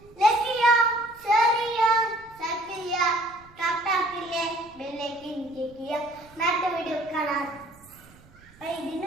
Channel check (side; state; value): right; noise; rumble, 26 dB below the sound